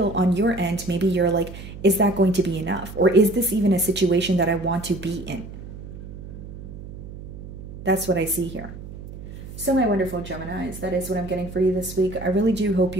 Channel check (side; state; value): right; noise; hum, 13 dB below the sound